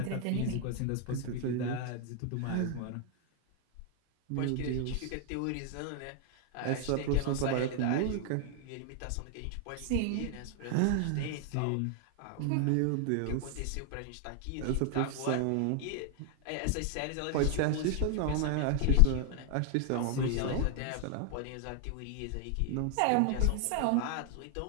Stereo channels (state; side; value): different; both; correlation 0.00